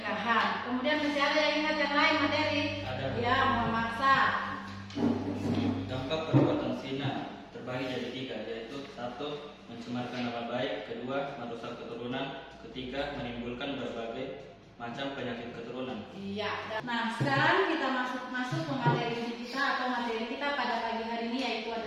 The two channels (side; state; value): both; identical; correlation 1.00